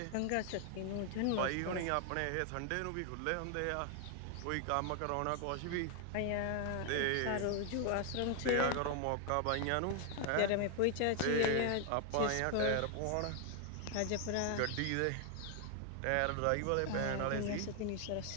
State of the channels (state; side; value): different; both; correlation 0.00